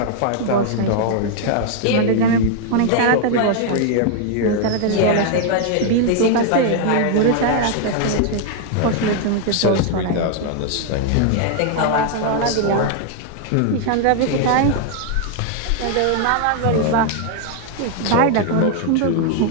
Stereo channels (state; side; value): different; both; correlation 0.00